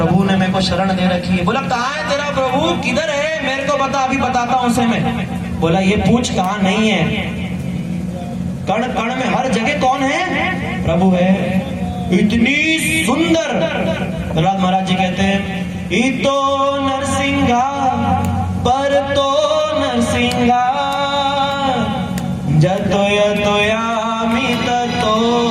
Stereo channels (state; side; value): noise; left; rumble, 30 dB below the sound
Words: ने मेरे को शरण दे रखी है। बोला कहाँ है तेरा प्रभु, किधर है, मेरे को बता, अभी बताता हूं उसे मैं। बोला ये पूछ कहाँ नहीं है, कण कण में हर जगह कौन है? प्रभु है। इतनी सुंदर प्रहलाद महाराज जी कहते हैं इतो नरसिंहा पर तो नरसिंहा जतो यतो यामि ततो